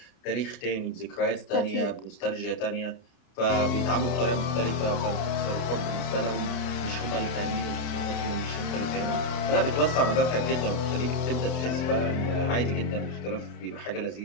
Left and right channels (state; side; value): late; right; 31 ms